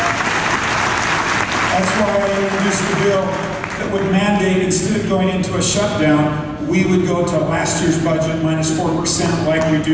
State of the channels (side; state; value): both; identical; correlation 1.00